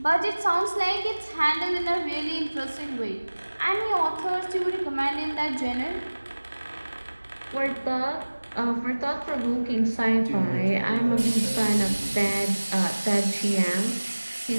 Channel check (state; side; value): inverted; both; correlation -1.00